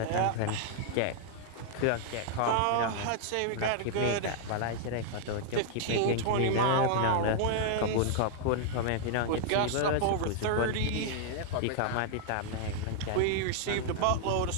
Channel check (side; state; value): both; different; correlation -0.01